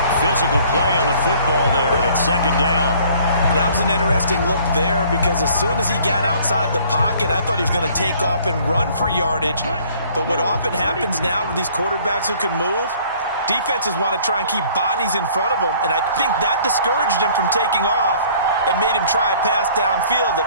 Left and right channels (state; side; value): inverted; both; correlation -0.55